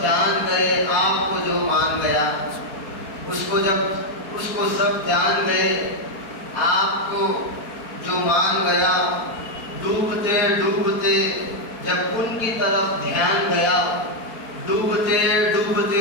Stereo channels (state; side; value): late; right; 4.4 ms